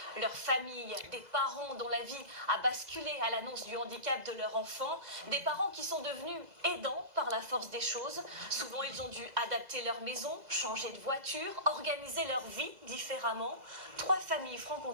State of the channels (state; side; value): late; left; 2.0 ms